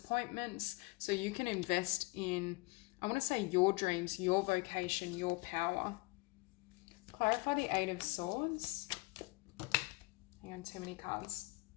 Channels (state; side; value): quieter; right; 24.5 dB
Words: so you can invest in, I want to say, your dreams, your vocation, your power. Clarify the Eight of Swords. Hang on, too many cards.